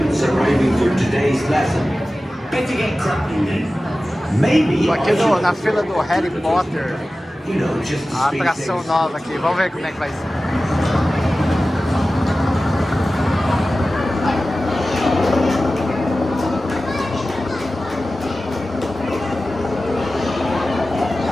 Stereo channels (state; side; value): normal; both; correlation 0.95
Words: arriving for today's lesson. Better get cracking then. Maybe Tô aqui na fila do Harry Potter, you know, just to a speed atração things. nova aqui. Vamos ver como é que vai ser.